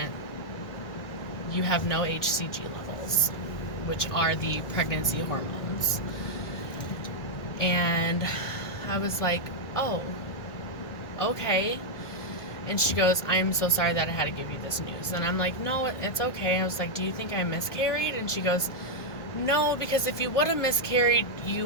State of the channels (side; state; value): right; late; 1.7 ms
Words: You have no HCG levels, which are the pregnancy hormones. And I was like, oh, okay. And she goes, I'm so sorry that I had to give you this news. And I'm like, no, it's okay. I was like, do you think I miscarried? And she goes, no, because if you would have miscarried,